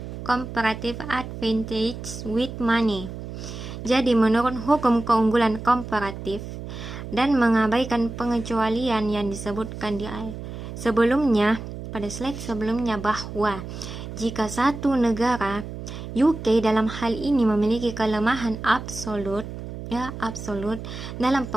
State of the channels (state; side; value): noise; right; hum, 9 dB below the sound